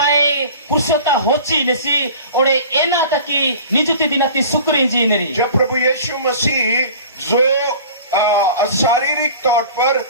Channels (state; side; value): inverted; both; correlation -0.42